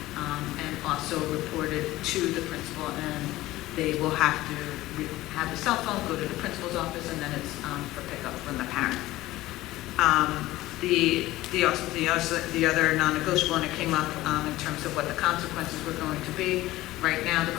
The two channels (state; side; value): quieter; right; 17.1 dB